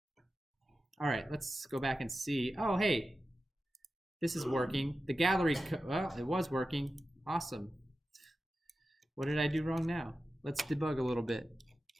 All right, let's go back and see. Oh, hey, this is working. The gallery, well, it was working. Awesome. What did I do wrong now? Let's debug a little bit.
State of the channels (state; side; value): normal; both; correlation 0.93